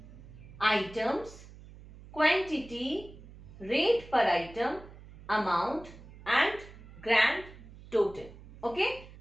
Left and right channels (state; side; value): noise; right; hum, 18 dB below the sound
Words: items, quantity, rate per item, amount and grand total. Okay.